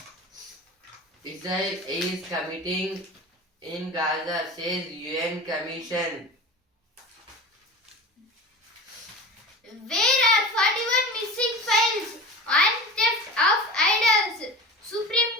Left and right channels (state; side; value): normal; both; correlation 0.32